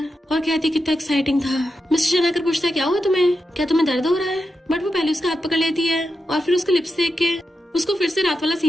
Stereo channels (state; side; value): normal; both; correlation 0.88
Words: और कहती कितना एक्साइटिंग था। मिस्टर चैन आकर पूछता है क्या हुआ तुम्हें, क्या तुम्हें दर्द हो रहा है। बट वो पहले उसका हाथ पकड़ लेती है और फिर उसके लिप्स देख के उसको फिर से रात वाला